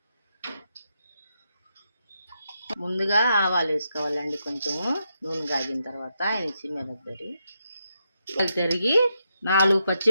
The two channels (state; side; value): inverted; both; correlation -0.82